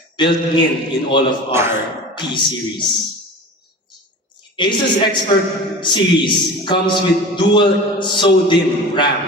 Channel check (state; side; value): normal; both; correlation 0.36